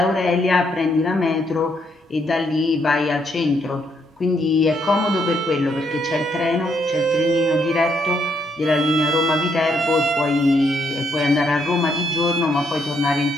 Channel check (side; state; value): both; normal; correlation 0.74